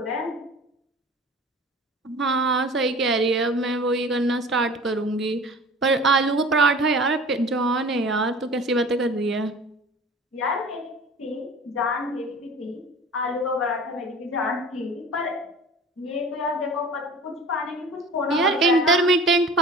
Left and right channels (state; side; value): normal; both; correlation 0.42